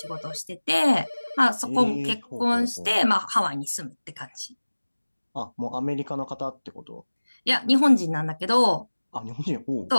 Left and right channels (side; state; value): both; inverted; correlation -1.00